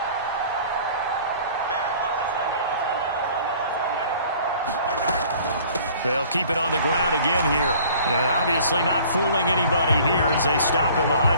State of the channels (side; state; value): both; inverted; correlation -0.51